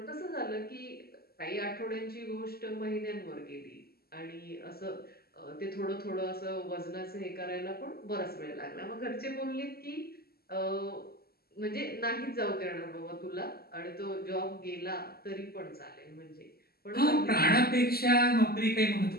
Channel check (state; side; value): late; right; 0.45 ms